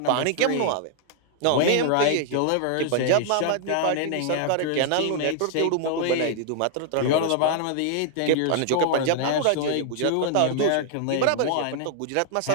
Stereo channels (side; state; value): both; different; correlation 0.00